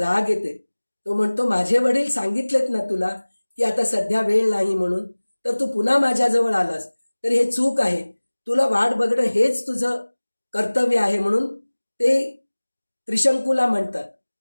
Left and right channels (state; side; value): inverted; both; correlation -1.00